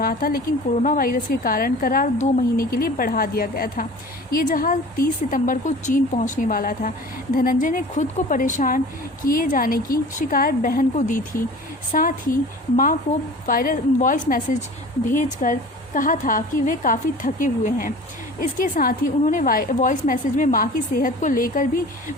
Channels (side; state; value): both; normal; correlation 0.41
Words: था, लेकिन कोरोना वायरस के कारण करार 2 महीने के लिए बढ़ा दिया गया था। ये जहाज़ 30 सितंबर को चीन पहुंचने वाला था। धनंजय ने खुद को परेशान किए जाने की शिकायत बहन को दी थी। साथ ही मां को वॉइस मैसेज भेजकर कहा था कि वे काफ़ी थके हुए हैं। इसके साथ ही उन्होंने वॉइस मैसेज में मां की सेहत को लेकर भी